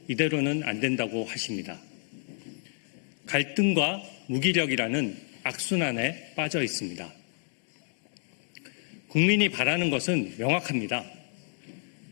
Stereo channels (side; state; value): right; silent; 58 dB below the other